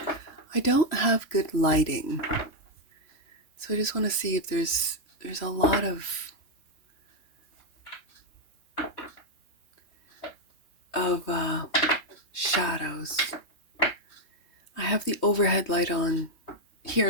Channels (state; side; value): late; right; 3.2 ms